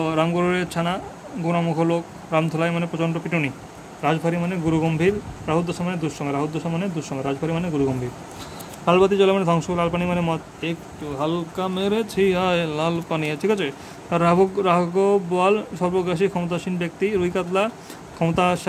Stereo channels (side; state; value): both; identical; correlation 1.00